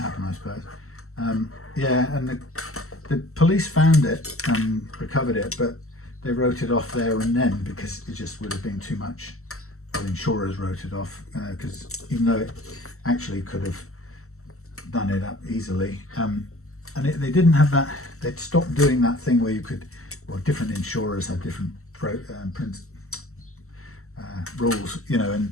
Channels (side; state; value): right; late; 0.63 ms